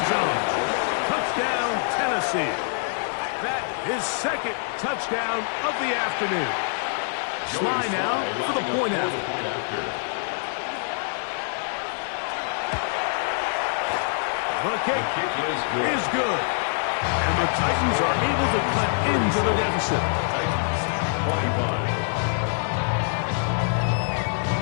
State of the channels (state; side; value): silent; right; digital silence